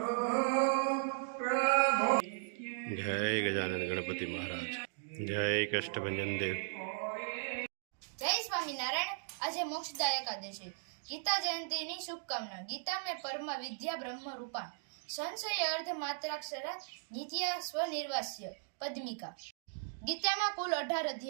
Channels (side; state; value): left; silent; digital silence